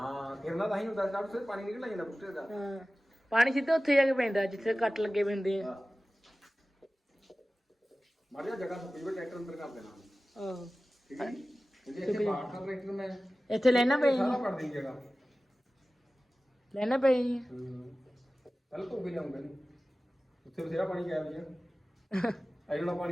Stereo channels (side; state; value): both; normal; correlation 0.96